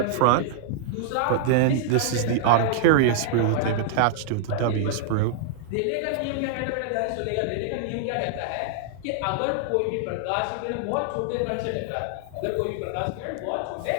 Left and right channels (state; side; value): different; both; correlation -0.01